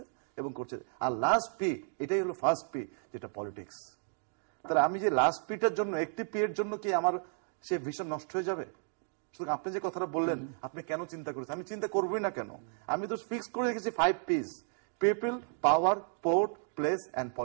এবং করছে। আর লাস্ট পি, এটাই হলো ফার্স্ট পি, যেটা পলিটিক্স। তাহলে আমি যে লাস্ট পিটার জন্য, একটি পি এর জন্য কি আমার সে ভিশন নষ্ট হয়ে যাবে? সুতরাং আপনি যে কথাটা বললেন, আপনি কেন চিন্তা করেছেন? আমি চিন্তা করবোই না কেন, আমি তো ফিক্স করে রেখেছি 5 piece, people, power, port, place and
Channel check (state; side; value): silent; left; 56 dB below the other